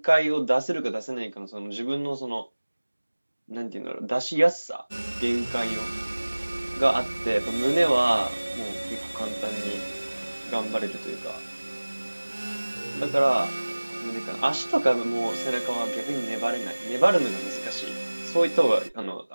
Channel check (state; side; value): inverted; both; correlation -1.00